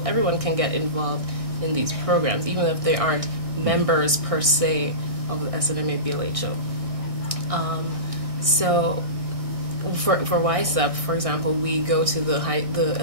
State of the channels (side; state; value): left; late; 1.6 ms